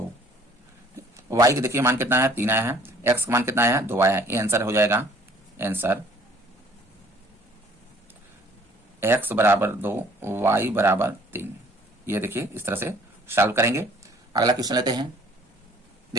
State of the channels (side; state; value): both; normal; correlation 0.55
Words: y के देखिए मान कितना है? 3 आया है, x का मान कितना आया है? 2 आया है, ये आंसर हो जाएगा। आंसर x बराबर 2, y बराबर 3। ये देखिए इस तरह से सॉल्व करेंगे। अगला क्वेश्चन लेते हैं।